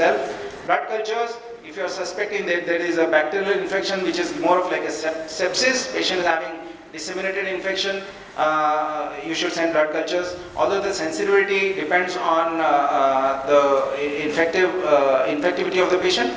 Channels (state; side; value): identical; both; correlation 1.00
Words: Blood cultures, if you are suspecting that there is a bacterial infection which is more of like a sepsis, patient is having disseminated infection, you should send blood cultures. Although the sensitivity depends on the infectivity of the patient,